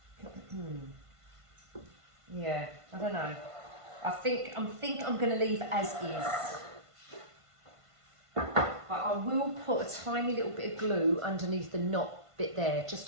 Yeah, I don't know. I think I'm going to leave as is. But I will put a tiny little bit of glue underneath the knot bit there, just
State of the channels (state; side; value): late; left; 1.5 ms